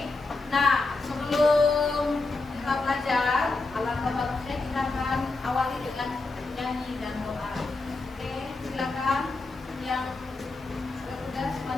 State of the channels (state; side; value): quieter; right; 3.4 dB